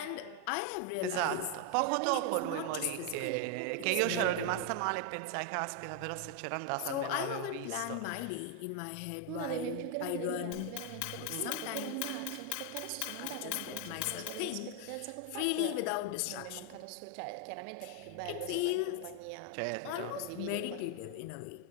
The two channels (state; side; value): different; both; correlation 0.00